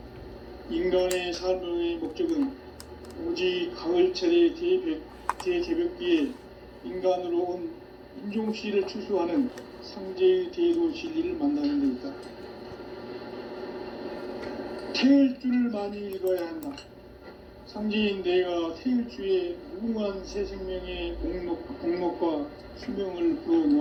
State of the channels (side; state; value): both; identical; correlation 1.00